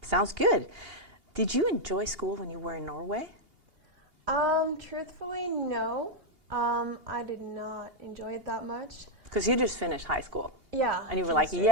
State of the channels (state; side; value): late; left; 2.8 ms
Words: Sounds good. Did you enjoy school when you were in Norway? Truthfully, no. I did not enjoy it that much. Because you just finished high school. Yeah. And you were like,